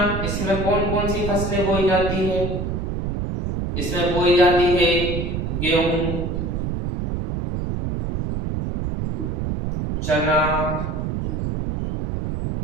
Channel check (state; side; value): noise; right; rumble, 2 dB below the sound